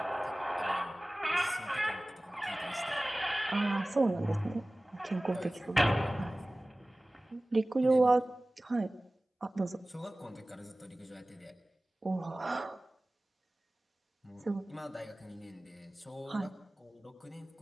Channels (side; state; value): both; normal; correlation 0.98